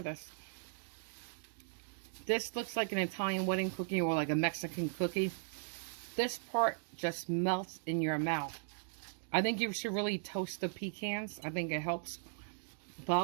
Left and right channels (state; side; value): silent; left; digital silence